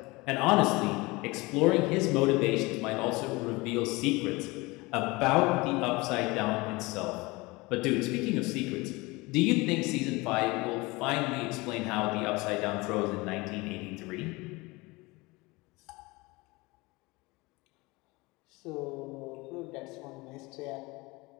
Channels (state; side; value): quieter; right; 23.5 dB